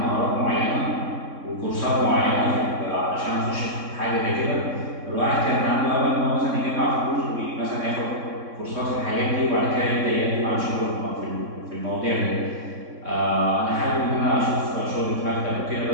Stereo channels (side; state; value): left; late; 3.6 ms